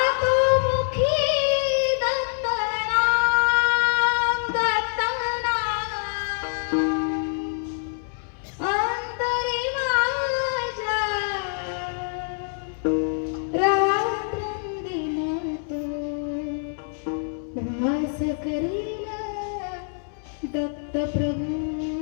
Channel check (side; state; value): right; silent; 62 dB below the other